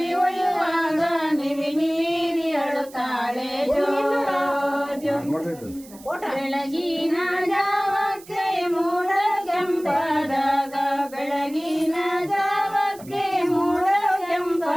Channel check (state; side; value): noise; right; hiss, 21 dB below the sound